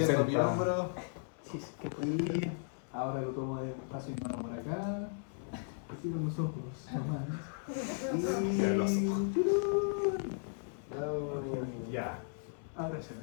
60. mi hombro. Y ahora lo tomo despacio por acá. Y cierro los ojos nomás. Y... Cierra los Bravo. Ya. Ahora se ve.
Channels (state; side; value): silent; right; 54 dB below the other